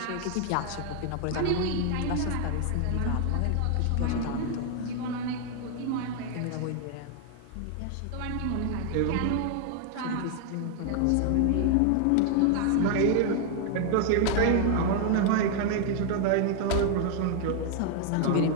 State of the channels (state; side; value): different; both; correlation 0.00